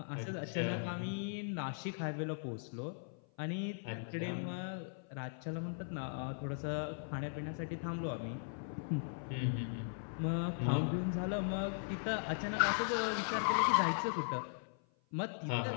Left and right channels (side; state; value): right; silent; 52 dB below the other